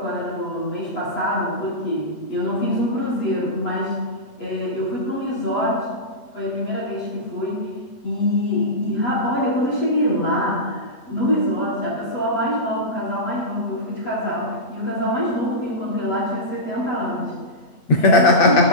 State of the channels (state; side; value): late; right; 8.5 ms